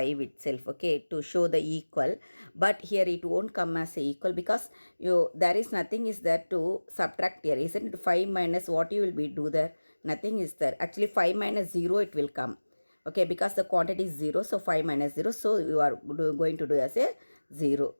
itself. Okay, to show the equal, but here it won't come as a equal because there is nothing is there to subtract here, isn't it? 5 minus what you will be do there? Nothing is there. Actually 5 minus 0 it will come. Okay, because the quantity is 0, so 5 minus 0, so you are going to do as a 0,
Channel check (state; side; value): inverted; both; correlation -1.00